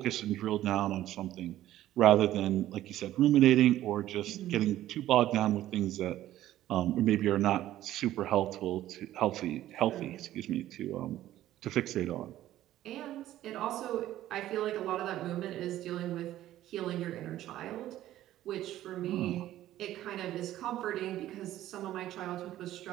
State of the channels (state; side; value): quieter; left; 13.7 dB